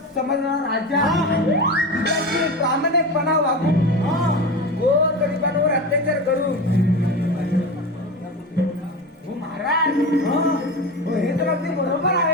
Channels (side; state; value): both; normal; correlation 0.26